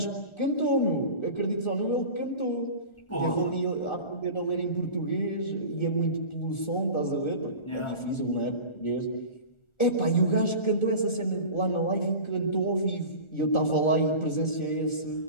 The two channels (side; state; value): right; late; 1.4 ms